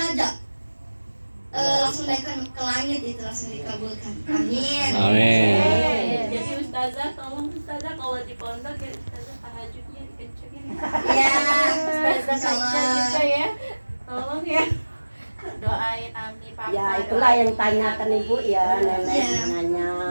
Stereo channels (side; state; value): both; inverted; correlation -1.00